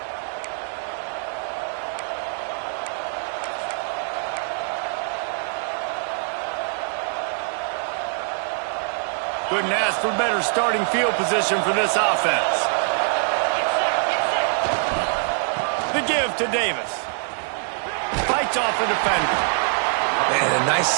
Couldn't ask for better starting field position for this offense. The give to Davis. Fights off the defender. And a nice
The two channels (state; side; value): silent; left; 57 dB below the other